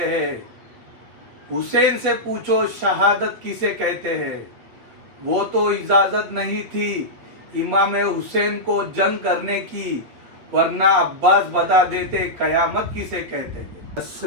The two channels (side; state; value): left; late; 8.6 ms